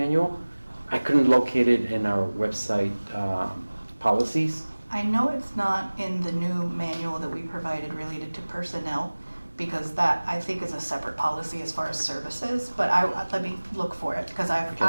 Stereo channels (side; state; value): both; inverted; correlation -1.00